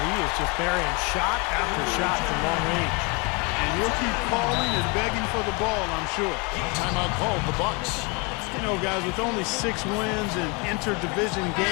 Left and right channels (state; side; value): quieter; right; 29.7 dB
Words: is just burying shot after shot from long range. And he'll keep calling and begging for the ball, I'm sure. Timeout called, the Bucks. You know, guys, with only 6 wins in inter-division